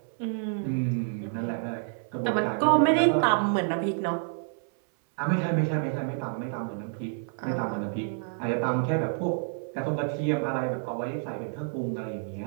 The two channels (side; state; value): left; silent; 59 dB below the other